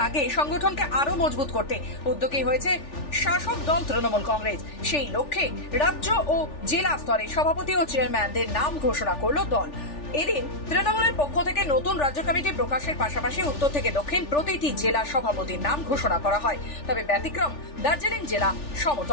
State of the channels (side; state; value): right; late; 3.4 ms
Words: আগে সংগঠনকে আরো মজবুত করতে উদ্যোগী হয়েছে শাসক দল তৃণমূল কংগ্রেস। সেই লক্ষ্যে রাজ্য ও জেলা স্তরে সভাপতি ও চেয়ারম্যানদের নাম ঘোষণা করল দল। এদিন তৃণমূলের পক্ষ থেকে নতুন রাজ্য কমিটি প্রকাশের পাশাপাশি উত্তর থেকে দক্ষিণ প্রতিটি জেলা সভাপতির নাম ঘোষণা করা হয়। তবে ব্যতিক্রম দার্জিলিং জেলা